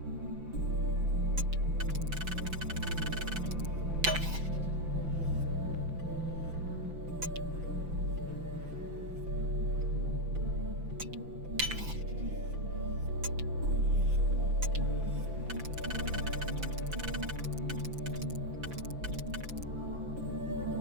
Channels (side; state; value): left; late; 5.9 ms